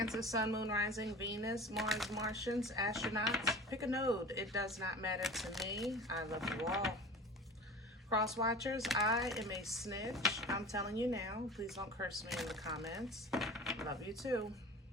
Sun, Moon, Rising, Venus, Mars, Martians, astronauts. Pick a node. It does not matter to me. I love you all. Cross watchers, I am a snitch. I'm telling you now. Please don't curse me in the comments. Love you too.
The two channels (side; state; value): both; normal; correlation 0.37